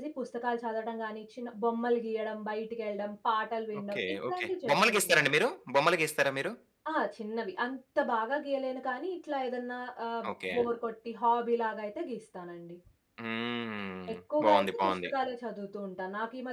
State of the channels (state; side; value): identical; both; correlation 1.00